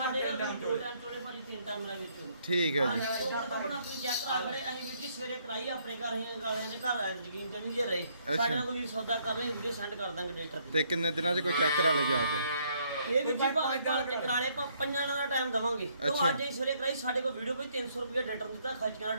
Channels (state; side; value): inverted; both; correlation -0.69